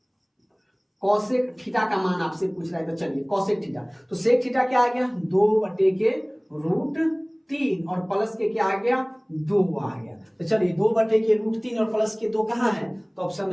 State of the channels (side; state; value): both; identical; correlation 1.00